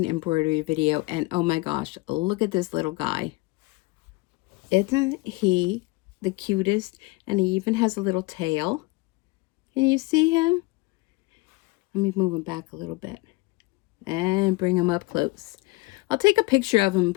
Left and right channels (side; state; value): right; quieter; 23.3 dB